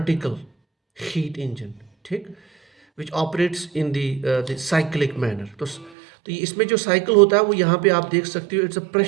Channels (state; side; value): drops out; left; at 5.9 s